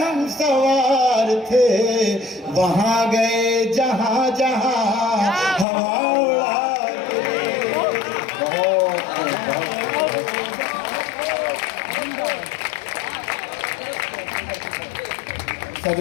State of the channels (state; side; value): drops out; right; at 5.7 s